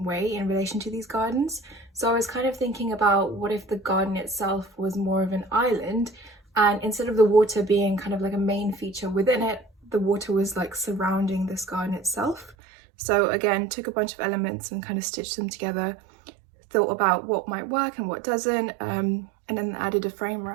way in relation to these gardens. So I was kind of thinking about what if the garden itself was more of an island, and instead of the water being kind of like a main feature within it, the water was like surrounding this garden itself. So again, took a bunch of elements and kind of stitched them together, thought about what might work and what doesn't, and then added a frame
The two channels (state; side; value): drops out; left; at 12.6 s